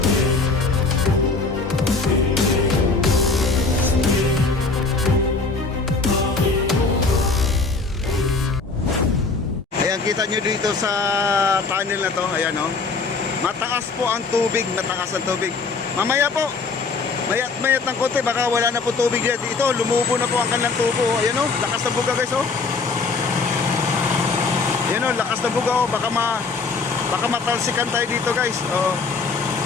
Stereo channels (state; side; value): quieter; right; 4.1 dB